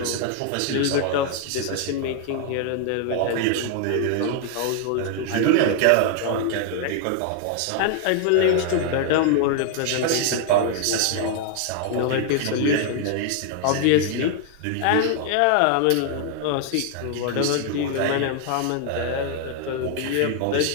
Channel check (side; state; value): both; different; correlation 0.00